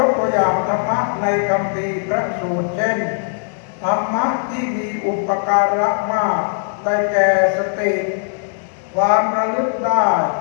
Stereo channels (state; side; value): silent; right; digital silence